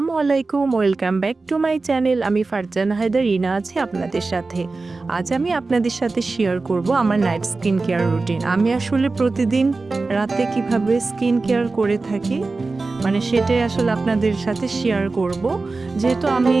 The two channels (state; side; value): quieter; left; 3.7 dB